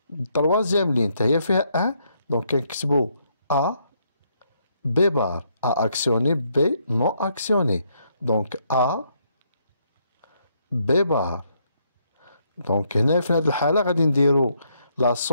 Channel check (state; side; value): inverted; both; correlation -0.73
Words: التروازيام لين حتى هي فيها 1. دونك كنكتبو A B بار. A اكسيوني B نون اكسيوني. دونك A B بار. دونك هنا في هاد الحالة غادي نديرو لا